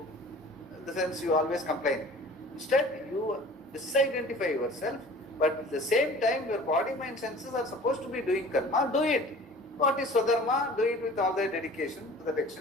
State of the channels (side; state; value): both; normal; correlation 0.45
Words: in the sense you always complain. Instead, you disidentify yourself, but at the same time, your body, mind, senses are supposed to be doing karma. Do it. What is Swadharma? Do it with all the dedication to that